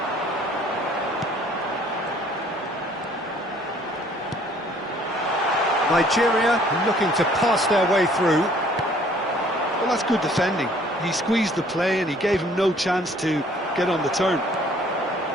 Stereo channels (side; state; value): both; normal; correlation 0.58